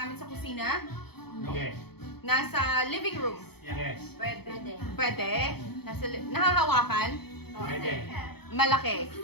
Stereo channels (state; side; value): late; right; 0.97 ms